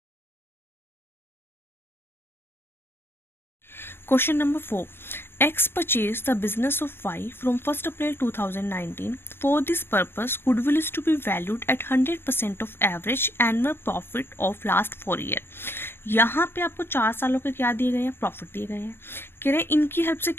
Question number 4. X purchased the business of Y from 1st April 2019. For this purpose, goodwill is to be valued at 100% of average annual profit of last 4 years. यहाँ पे आपको 4 सालों के क्या दिए गए हैं, प्रॉफिट दिए गए हैं। कह रहे हैं इनकी हेल्प से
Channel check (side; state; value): right; late; 0.11 ms